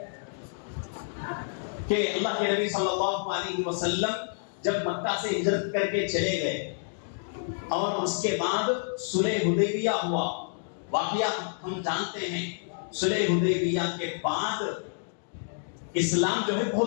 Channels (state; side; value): silent; right; digital silence